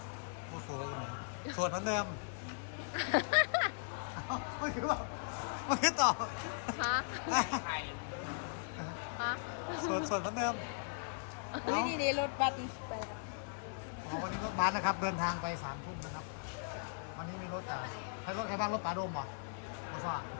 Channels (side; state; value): right; silent; digital silence